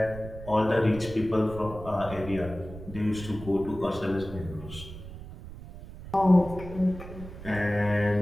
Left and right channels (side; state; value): right; noise; rumble, 13 dB below the sound